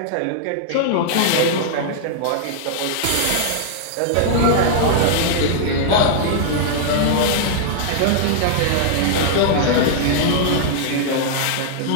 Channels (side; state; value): both; different; correlation -0.01